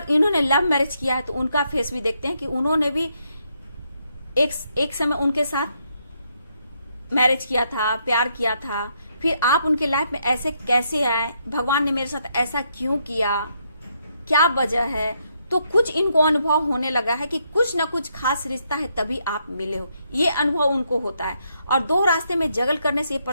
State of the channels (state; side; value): inverted; both; correlation -0.76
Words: इन्होंने लव मैरिज किया है तो उनका फेस भी देखते हैं कि उन्होंने भी एक समय उनके साथ मैरिज किया था, प्यार किया था, फिर आप उनके लाइफ में ऐसे कैसे आए, भगवान ने मेरे साथ ऐसा क्यों किया, क्या वजह है। तो कुछ इनको अनुभव होने लगा है कि कुछ ना कुछ खास रिश्ता है तभी आप मिले हो, ये अनुभव उनको होता है। और 2 रास्ते में जगल करने से ये